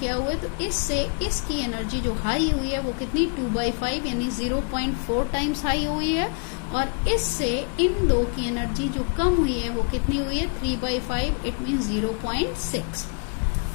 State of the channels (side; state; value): right; quieter; 38.3 dB